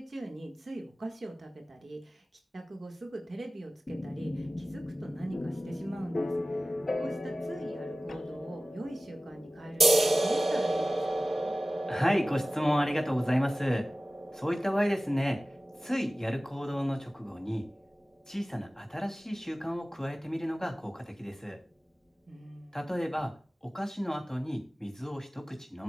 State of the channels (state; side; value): normal; both; correlation 0.97